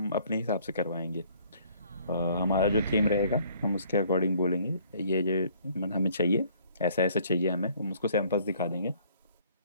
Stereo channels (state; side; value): inverted; both; correlation -0.60